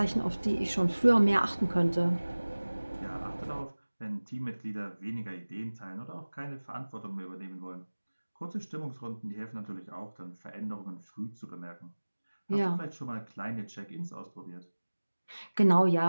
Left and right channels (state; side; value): inverted; both; correlation -1.00